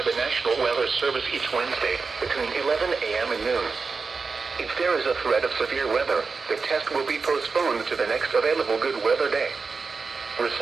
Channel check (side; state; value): left; quieter; 4.6 dB